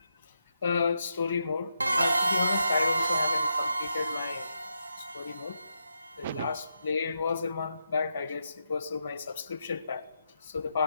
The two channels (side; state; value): both; inverted; correlation -0.84